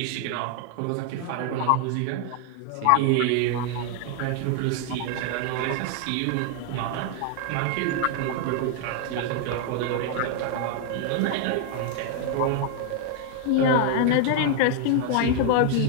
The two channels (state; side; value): different; both; correlation 0.00